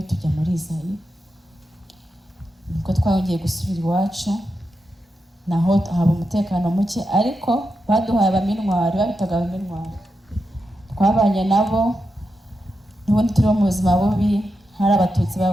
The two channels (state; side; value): normal; both; correlation 0.87